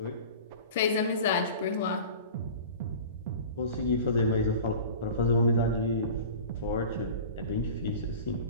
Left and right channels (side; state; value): both; inverted; correlation -0.38